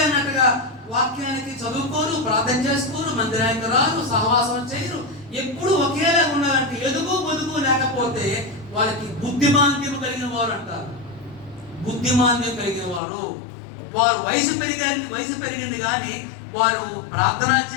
అన్నట్టుగా వాక్యానికి చదువుకోరు, ప్రార్థన చేసుకోరు, మందిరానికి రారు, సహవాసం చేయరు, ఎప్పుడు ఒకేలా ఉండాలంటే ఎదుగు బొదుగు లేకపోతే వాళ్ళకి బుద్ధిమాంద్యం కలిగిన వారు అంటారు. బుద్ధిమాంద్యం కలిగిన వారు, వారు వయసు పెరిగింది కానీ వారు ప్రార్థనా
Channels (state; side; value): drops out; right; at 13.0 s